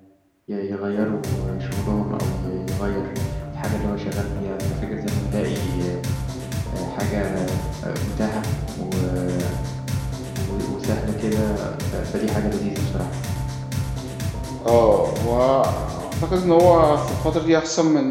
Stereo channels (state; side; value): identical; both; correlation 1.00